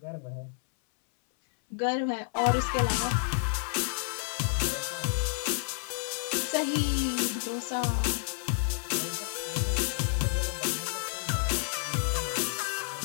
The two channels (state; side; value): silent; right; 58 dB below the other